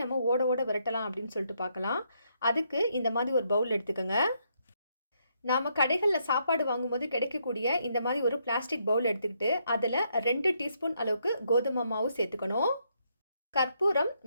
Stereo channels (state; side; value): inverted; both; correlation -0.75